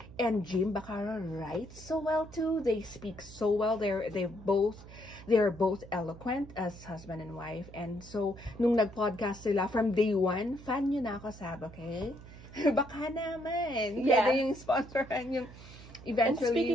And Jim Bacaro writes so well too. They speak so well. They're both eloquent as husband and wife. And so nung nag-podcast sila from day one, fan nyo na ako, Sab, okay? Baka naman. Yeah. Pwede yung sponsoran yung eventually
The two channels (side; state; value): right; noise; hum, 17 dB below the sound